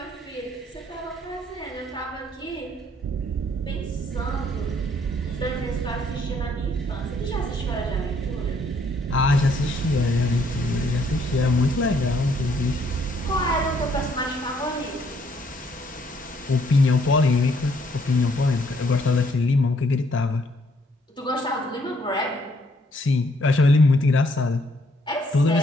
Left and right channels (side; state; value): both; normal; correlation 0.67